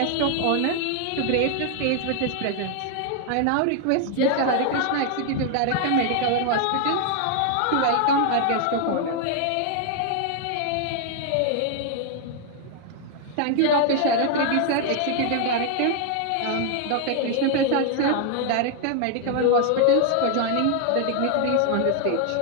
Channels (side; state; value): both; different; correlation 0.00